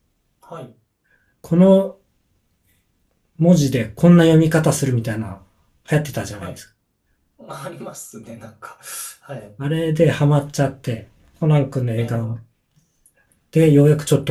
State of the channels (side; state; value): both; identical; correlation 1.00